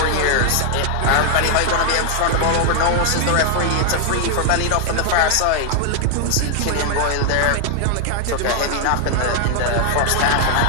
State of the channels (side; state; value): both; different; correlation 0.00